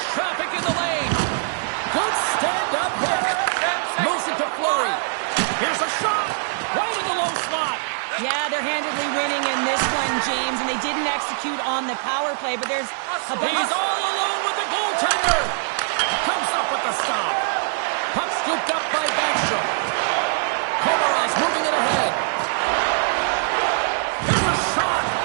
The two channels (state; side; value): silent; left; digital silence